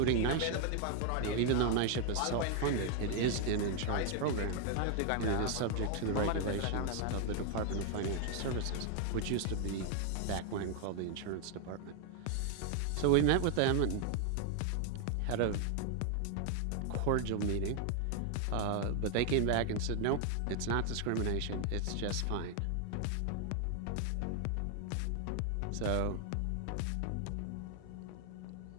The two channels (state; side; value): different; both; correlation 0.00